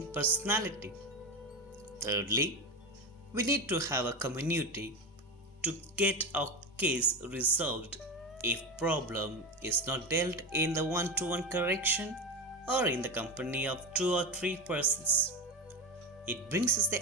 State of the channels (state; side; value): normal; both; correlation 0.20